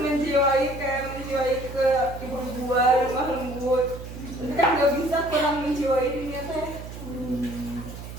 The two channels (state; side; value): noise; right; hum, 11 dB below the sound